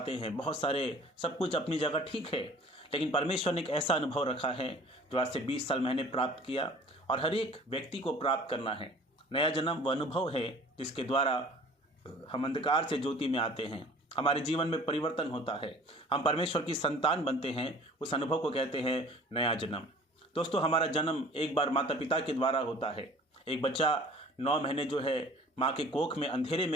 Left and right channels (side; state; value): both; normal; correlation 0.48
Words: हैं, बहुत सारे, सब कुछ अपनी जगह ठीक है, लेकिन परमेश्वर ने एक ऐसा अनुभव रखा है जो आज से 20 साल मैंने प्राप्त किया और हर एक व्यक्ति को प्राप्त करना है। नया जन्म वह अनुभव है जिसके द्वारा हम अंधकार से ज्योति में आते हैं, हमारे जीवन में परिवर्तन होता है, हम परमेश्वर की संतान बनते हैं। उस अनुभव को कहते हैं नया जन्म। दोस्तों, हमारा जन्म एक बार माता पिता के द्वारा होता है। एक बच्चा 9 महीने जो है माँ के कोख में अंधेरे